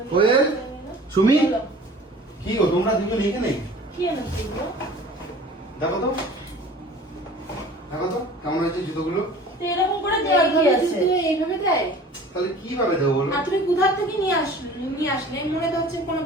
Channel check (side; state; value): both; normal; correlation 0.45